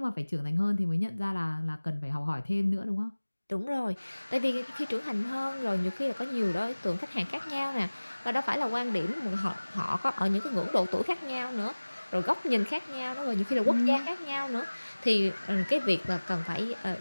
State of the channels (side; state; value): both; inverted; correlation -1.00